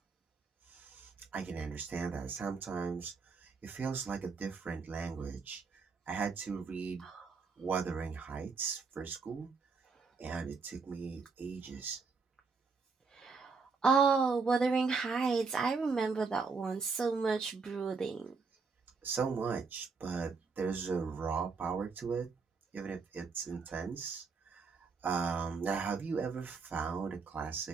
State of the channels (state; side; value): quieter; left; 4.8 dB